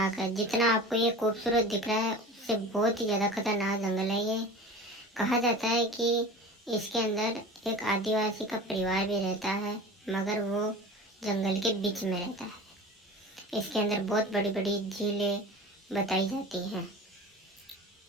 है। जितना आपको ये खूबसूरत दिख रहा है उससे बहुत ही ज़्यादा खतरनाक जंगल है ये। कहा जाता है कि इसके अंदर एक आदिवासी का परिवार भी रहता है, मगर वो जंगल के बीच में रहता है। इसके अंदर बहुत बड़ी बड़ी झीलें बताई जाती हैं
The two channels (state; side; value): normal; both; correlation 0.36